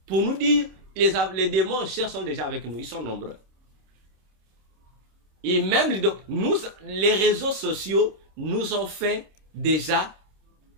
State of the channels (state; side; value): late; left; 26 ms